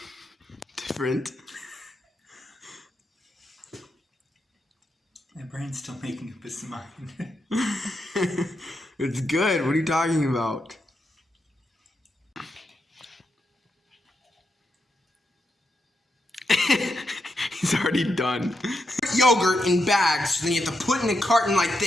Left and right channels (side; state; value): both; normal; correlation 0.84